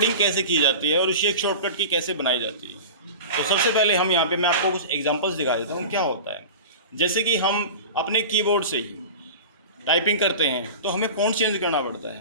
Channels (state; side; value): inverted; both; correlation -0.32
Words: कैसे की जाती है और उसी एक शॉर्टकट की कैसे बनाई जाती है। तो सबसे पहले हम यहाँ पे मैं आपको कुछ एग्जांपल्स दिखा देता हूँ क्या होता है। जैसे कि हम अपने कीबोर्ड से ही टाइपिंग करते हैं तो हमें फ़ॉन्ट चेंज करना पड़ता